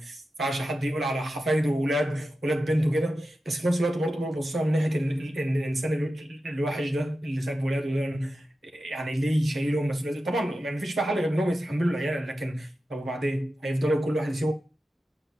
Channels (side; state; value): both; normal; correlation 0.92